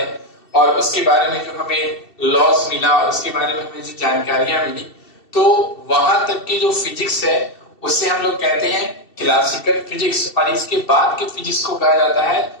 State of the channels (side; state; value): right; late; 2.7 ms